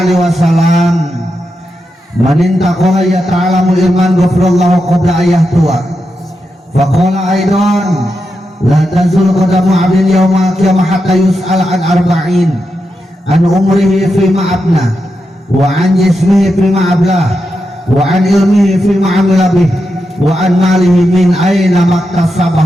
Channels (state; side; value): normal; both; correlation 0.87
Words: wasallam man intaqala ya ta'lamul iman ghafirallahu qabla ayahtuwa. Faqala aidan la tazul qadamu 'abdin yawmal qiyamah hatta yus'al an arba'in an umrihi fima abna wa an jismihi fima ablah wa an ilmihi fima 'amila bih wa an malihi min aina